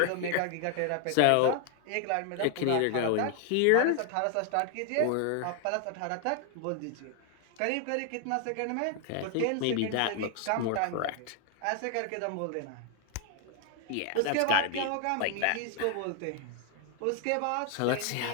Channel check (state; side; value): different; both; correlation 0.00